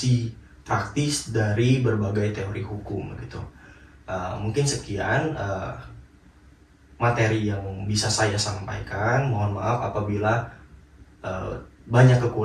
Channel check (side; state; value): both; identical; correlation 1.00